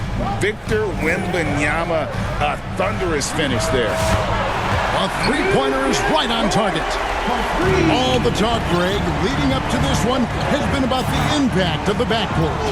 Victor Wembanyama, a thunderous finish there. A three-pointer is right on target. All the talk, Greg, leading up to this one has been about the impact of the backcourt.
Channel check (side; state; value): both; identical; correlation 1.00